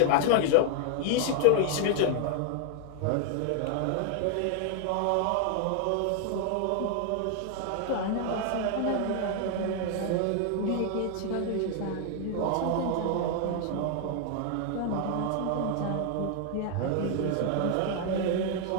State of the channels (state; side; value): different; both; correlation 0.00